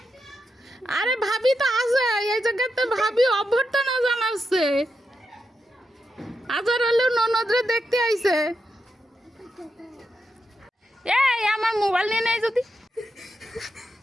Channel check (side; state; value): both; normal; correlation 0.86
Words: আরে ভাবি তো আছে এই জায়গাতে ভাবি অভ্যর্থনা জানাচ্ছে আজার হলেও ননদরে দেখতে আইছে এই আমার মোবাইল নিয়ে নেই যদি